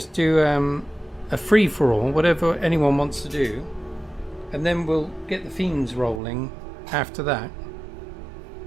do a free for all, whatever anyone wants to do, and then we'll get the themes rolling after that.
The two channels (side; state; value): left; drops out; at 6.2 s